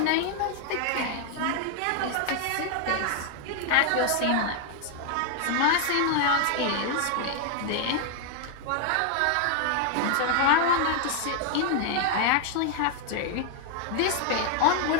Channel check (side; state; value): both; different; correlation 0.00